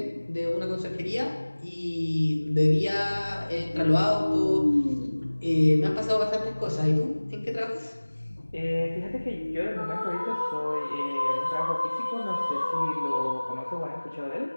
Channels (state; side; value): inverted; both; correlation -1.00